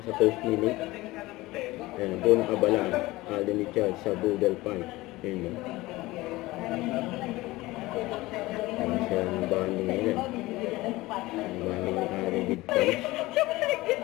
post nila. Buong abala Alden Richard sa boodle fight. Sa bonding nila, bonding ni Alden with fans.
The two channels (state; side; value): quieter; right; 19.5 dB